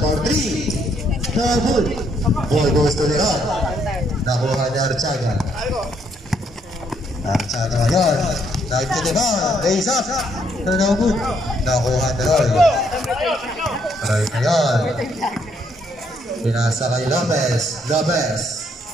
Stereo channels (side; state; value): both; normal; correlation 0.71